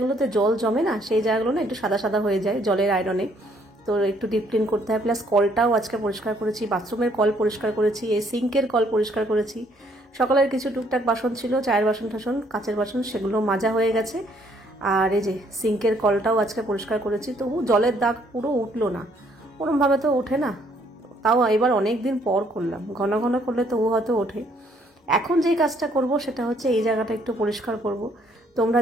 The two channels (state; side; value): normal; both; correlation 0.66